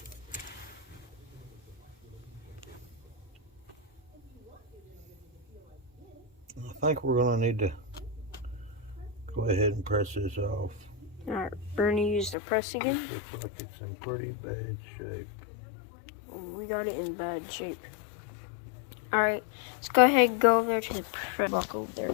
I think we're gonna need to go ahead and press this off. Alright, we're gonna use the press again. Looks like it's in pretty bad shape. We got it in bad shape. Alright, let's go ahead and go over there to the press block over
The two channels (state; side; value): drops out; right; at 12.4 s